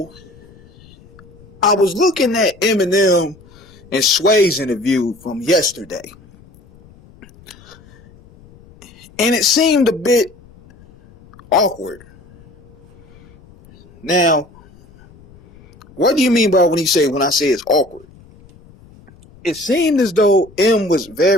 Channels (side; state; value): left; noise; rumble, 26 dB below the sound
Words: I was looking at Eminem and Sway's interview from yesterday. And it seemed a bit awkward. Now, what do you mean by when I say it's awkward? It seemed as though M was